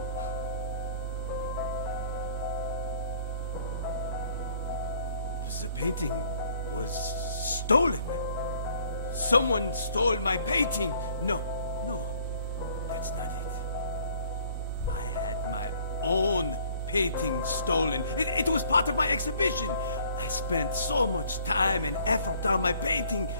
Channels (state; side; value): inverted; both; correlation -0.58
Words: The painting was stolen. Someone stole my painting. No, that's not it. I had my own painting stolen. It was part of my exhibition. I spent so much time and effort on my painting.